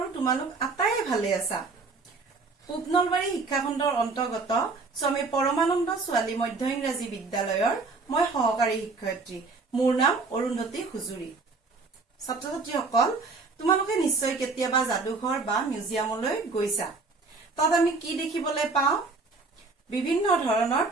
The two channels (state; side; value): quieter; left; 4.0 dB